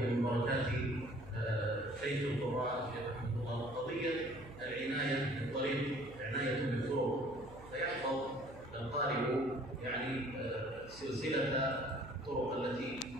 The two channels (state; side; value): noise; right; hum, 17 dB below the sound